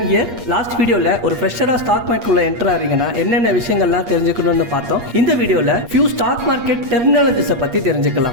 here. Last வீடியோல ஒரு ஃப்ரெஷரா ஸ்டாக் மார்க்கெட்ல என்டர் ஆறீங்கன்னா என்னென்ன விஷயங்கள்லாம் தெரிஞ்சுக்கணும்னு பார்த்தோம். இந்த வீடியோல few stock market terminologies பத்தி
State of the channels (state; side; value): late; left; 8.5 ms